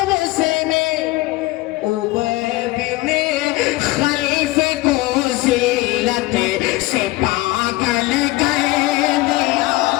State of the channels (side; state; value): right; quieter; 20.0 dB